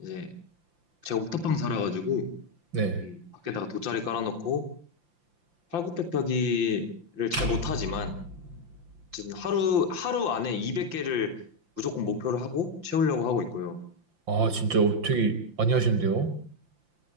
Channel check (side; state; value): left; late; 5.8 ms